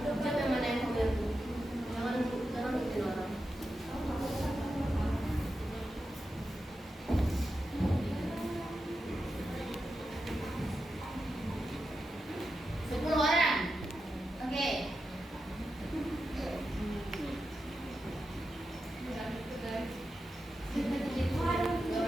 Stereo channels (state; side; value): normal; both; correlation 0.89